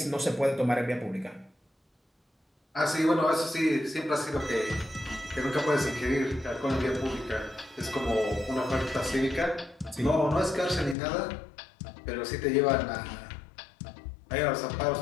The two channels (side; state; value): right; drops out; at 11.0 s